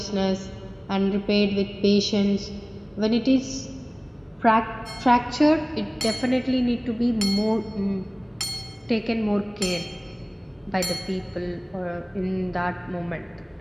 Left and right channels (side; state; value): both; identical; correlation 1.00